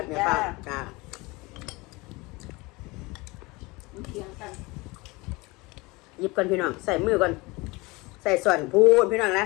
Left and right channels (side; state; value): right; quieter; 24.0 dB